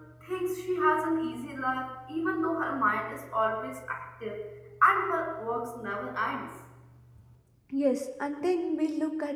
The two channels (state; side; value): identical; both; correlation 1.00